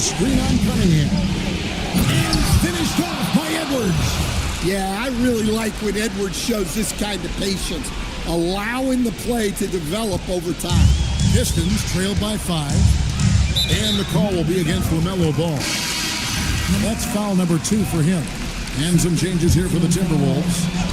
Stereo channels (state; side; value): identical; both; correlation 1.00